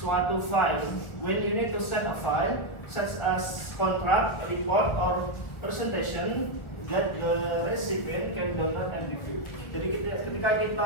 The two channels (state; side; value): late; right; 1.4 ms